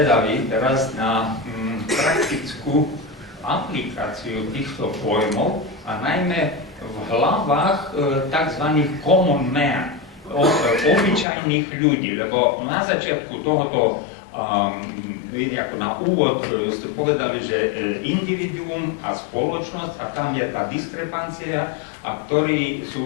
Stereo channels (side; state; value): right; drops out; at 11.2 s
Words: teraz na praktickú aplikáciu týchto pojmov a najmä v hlavách tzv. Common man, obyčajných ľudí, lebo na začiatku tohoto, ako na úvod ste povedali, že individuum a spoločnosť a tam je tá diskrepancia a ktorí